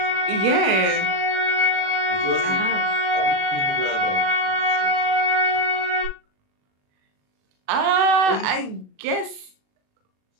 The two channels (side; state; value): left; late; 37 ms